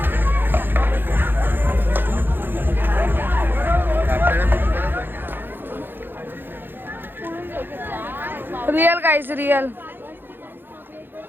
रियल गाइस रियल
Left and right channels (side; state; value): left; late; 0.098 ms